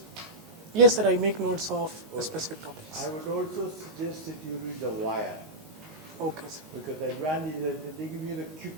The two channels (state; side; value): normal; both; correlation -0.11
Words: Yes, sir, I make notes of Okay. specific topics. I would also suggest that you read The Wire, Okay, sir. because the advantage is that they give you the quick